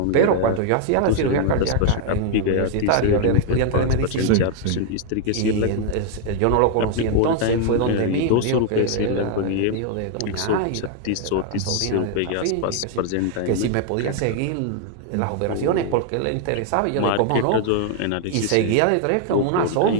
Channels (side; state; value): both; different; correlation 0.00